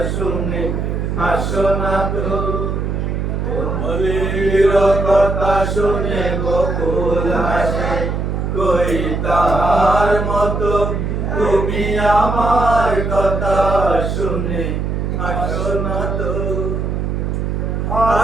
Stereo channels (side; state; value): right; noise; hum, 1 dB below the sound